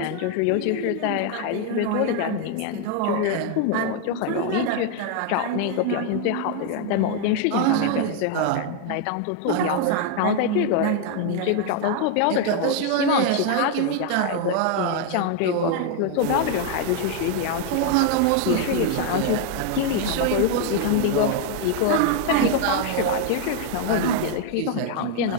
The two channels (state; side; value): different; both; correlation 0.00